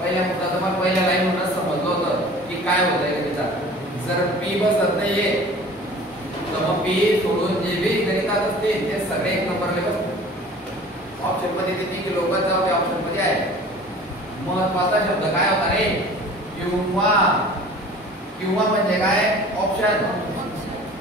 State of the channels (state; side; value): normal; both; correlation 0.45